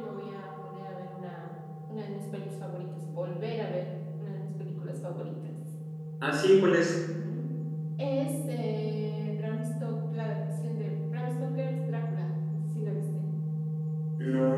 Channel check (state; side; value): identical; both; correlation 1.00